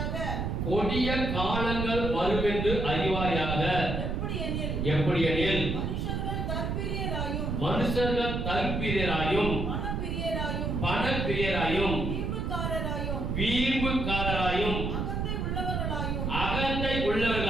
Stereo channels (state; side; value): noise; right; rumble, 1 dB below the sound